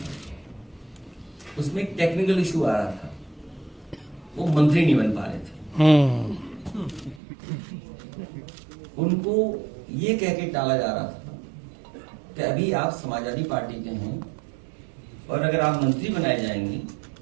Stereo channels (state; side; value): drops out; left; at 7.2 s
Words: उसमें एक टेक्निकल इशू आ रहा था, वो मंत्री नहीं बन पा रहे थे। उनको ये कह के टाला जा रहा था कि अभी आप समाजवादी पार्टी के हैं और अगर आप मंत्री बनाए जाएंगे